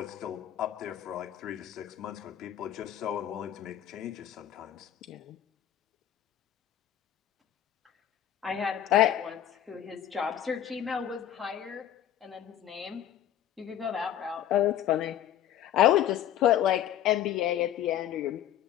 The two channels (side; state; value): right; quieter; 11.0 dB